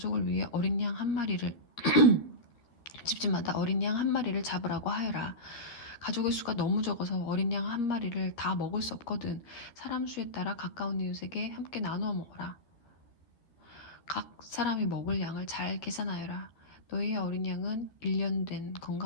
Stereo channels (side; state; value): right; late; 13 ms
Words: 위해 어린 양 한 마리를 집집마다 어린 양 한 마리를 잡으라고 하여라. 가족의 수가 너무 적어서 어린 양 한 마리를 다 먹을 수 없거든. 사람 수에 따라 가까운 이웃에게 함께 나누어 먹어라. 각 사람이 먹을 양을 잘 계산하여라. 너희의 어린 양은 1년 된